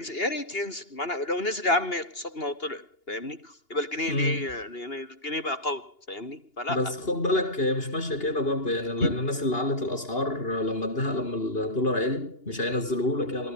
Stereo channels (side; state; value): right; late; 2.8 ms